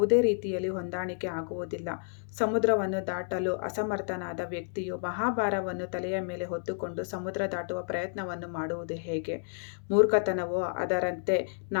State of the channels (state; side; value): silent; right; 57 dB below the other